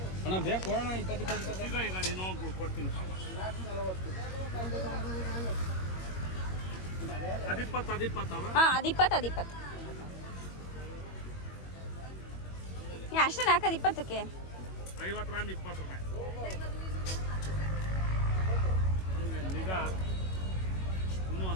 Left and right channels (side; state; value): right; late; 21 ms